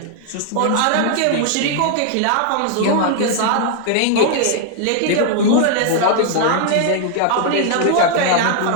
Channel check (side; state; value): both; different; correlation 0.00